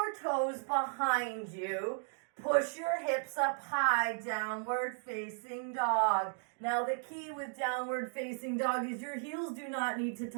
toes behind you. Push your hips up high, downward facing dog. Now the key with downward facing dog is your heels do not need to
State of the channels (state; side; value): silent; left; 54 dB below the other